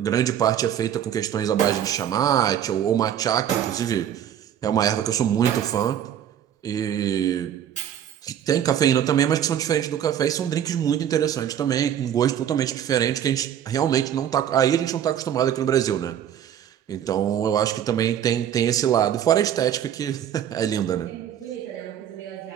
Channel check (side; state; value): left; quieter; 9.9 dB